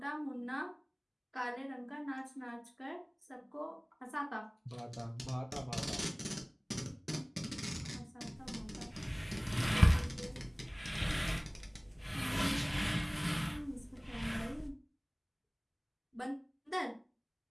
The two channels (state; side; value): identical; both; correlation 1.00